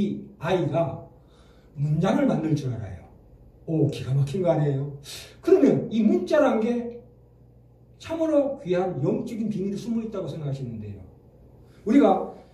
아이가 문장을 만들 줄 알아요. 오, 기가 막힌 거 아니에요? 그러면 이 문자란 게 참으로 귀한 영적인 비밀이 숨어 있다고 생각하시는데요. 우리가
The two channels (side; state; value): both; identical; correlation 1.00